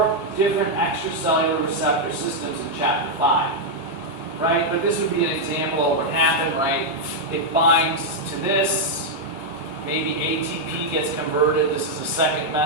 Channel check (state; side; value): normal; both; correlation -0.02